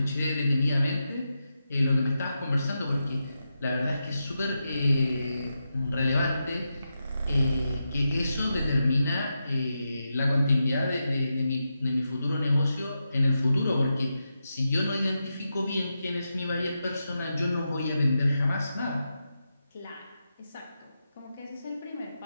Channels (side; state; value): both; inverted; correlation -0.88